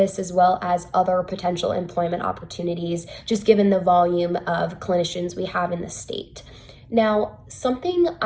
as well as other potential employment opportunities, just given the volume of clinicians we have in the state. Now, something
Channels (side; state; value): both; identical; correlation 1.00